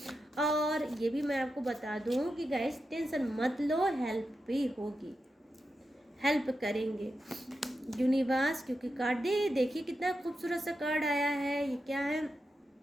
और ये भी मैं आपको बता दूं कि गाइस टेंशन मत लो, हेल्प भी होगी, हेल्प करेंगे यूनिवर्स। क्योंकि कार्ड देखिए कितना खूबसूरत सा कार्ड आया है, ये क्या है,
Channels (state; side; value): normal; both; correlation 0.88